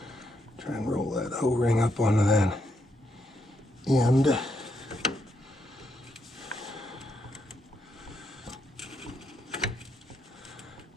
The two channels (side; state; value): both; normal; correlation 0.79